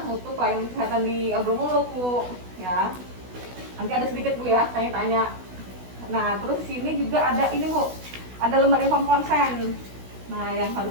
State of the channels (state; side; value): late; left; 16 ms